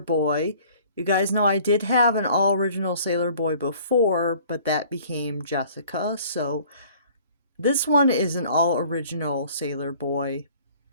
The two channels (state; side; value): inverted; both; correlation -0.53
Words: You guys know I did have an all-original Sailor Boy before, but that became Jessica, so this one is an all-original Sailor Boy.